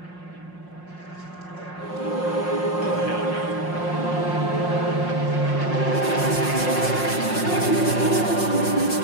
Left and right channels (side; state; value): right; late; 5.6 ms